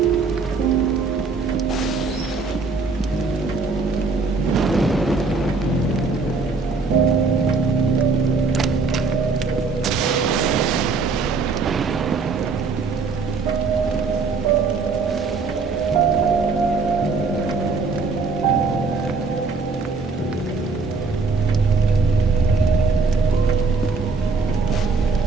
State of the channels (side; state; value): left; quieter; 4.3 dB